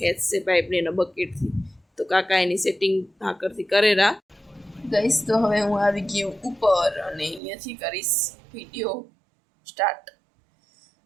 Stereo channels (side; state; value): left; drops out; at 7.4 s